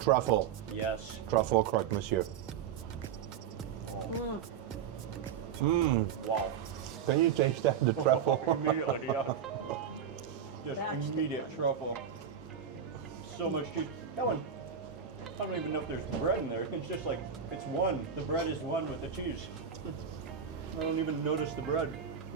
Yes. Truffle croque monsieur. Wow. Can you taste that, the truffle? Immediately, yeah. Just That's the immediate one. truffle. So much cheese. That one, I don't even know if there's bread in there. It's just like, it's one. The bread is one with the cheese. I don't even notice the bread.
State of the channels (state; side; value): quieter; left; 7.9 dB